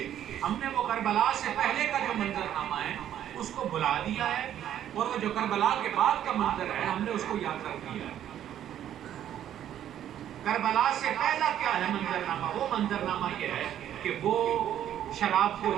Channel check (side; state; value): left; quieter; 10.9 dB